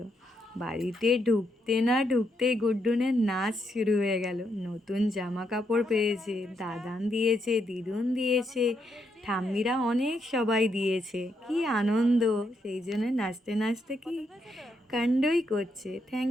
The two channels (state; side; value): normal; both; correlation 0.79